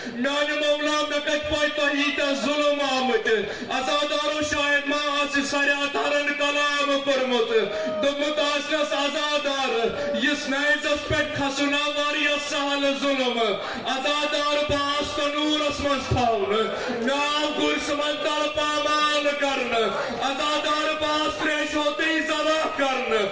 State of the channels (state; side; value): identical; both; correlation 1.00